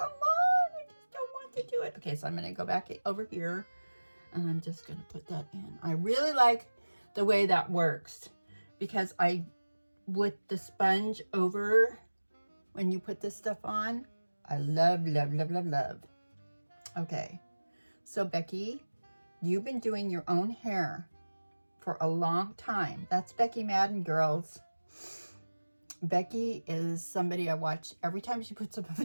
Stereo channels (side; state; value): both; inverted; correlation -1.00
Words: I just don't want to do it. Okay, so I'm going to go back over here, and I'm just going to put that in. I really like the way that works, because with the sponge over, when you put this stuff on, I love, love, love, love, love. Okay, so Becky, you've been doing your own hair for a long time. That's Becky Madden, girls. Becky is somebody I watch every time she puts up a